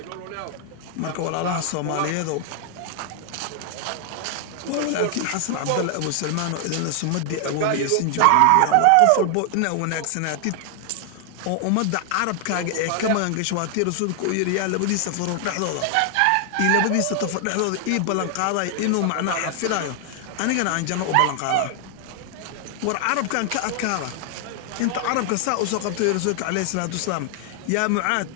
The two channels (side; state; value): both; different; correlation 0.00